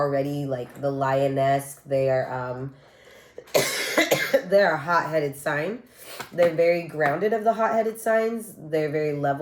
like the lioness. They are, they're a hot-headed sign. They're very grounded of the hot-headed signs. They're very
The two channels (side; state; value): both; identical; correlation 1.00